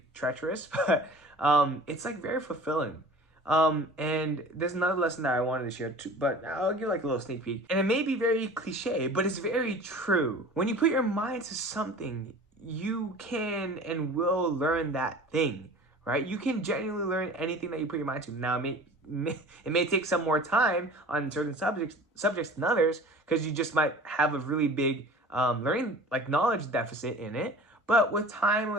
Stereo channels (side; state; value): both; normal; correlation 0.42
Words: treacherous, but it's like very fulfilling. And there's another lesson that I wanted to share too, but I'll give like a little sneak peek. And it may be very cliche, but it's very true. When you put your mind to something, you can and will learn that thing, right? You can genuinely learn anything that you put your mind to. Now, it may take some more time on certain subjects than others, because you just might have a really big learning, like, knowledge deficit in it. But with time,